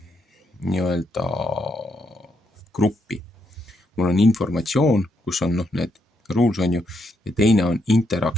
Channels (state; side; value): normal; both; correlation 0.77